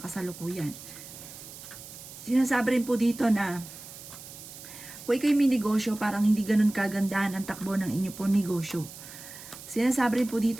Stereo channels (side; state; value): right; noise; hiss, 15 dB below the sound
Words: Sinasabi rin po dito na kung ikaw'y may negosyo, parang hindi ganun kagandahan ang takbo ng inyo po negosyo. Sinasabi rin po